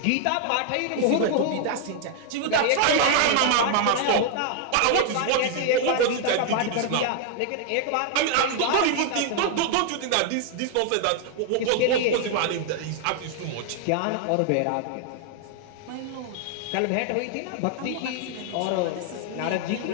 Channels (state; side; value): different; both; correlation 0.00